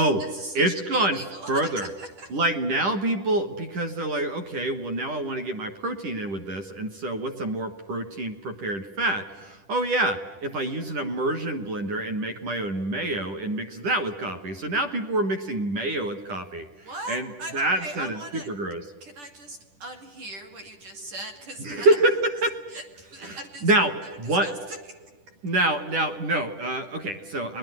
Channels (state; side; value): late; left; 10 ms